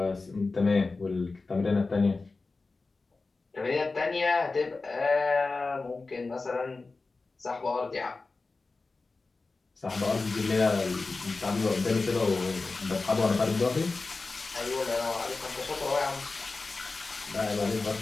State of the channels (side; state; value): right; quieter; 3.8 dB